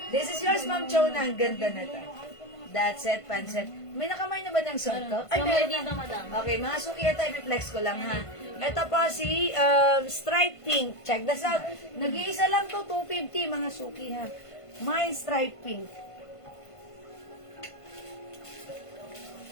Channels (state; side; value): late; right; 1.5 ms